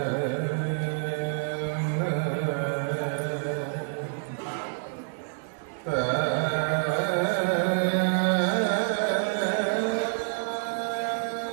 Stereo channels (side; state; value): left; silent; 60 dB below the other